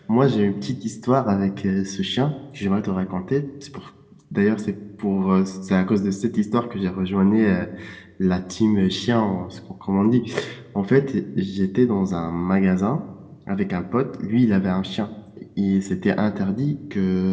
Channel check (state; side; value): identical; both; correlation 1.00